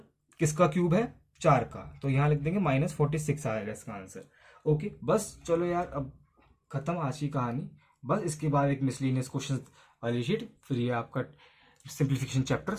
किसका क्यूब है? 4 का, तो यहाँ लिख देंगे -46 आएगा इसका आंसर। ओके, बस चलो यार, अब खत्म आज की कहानी। बस इसके बाद एक मिसलिनियस क्वेश्चन वाली शीट, फिर ये आपका सिंप्लीफिकेशन चैप्टर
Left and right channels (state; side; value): identical; both; correlation 1.00